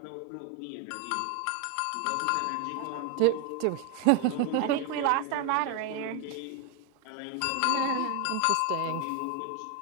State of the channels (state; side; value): different; both; correlation 0.01